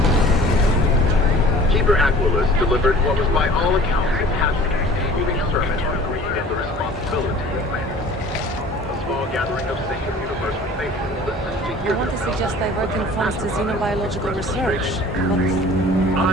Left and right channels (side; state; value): both; normal; correlation 0.47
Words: Keeper Aquilus delivered what was by all accounts a passionate, moving sermon on greed and the responsibility of man. A small gathering of sacred universal faithful listened to hear I want to suggest diverting funds to xenobiological research, but